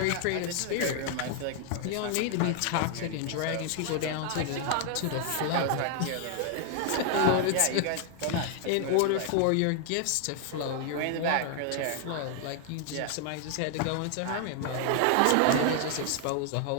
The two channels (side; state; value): both; different; correlation 0.00